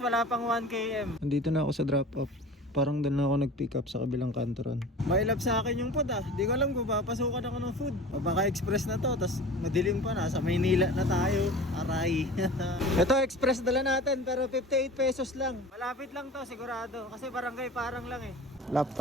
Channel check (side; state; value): both; normal; correlation 0.38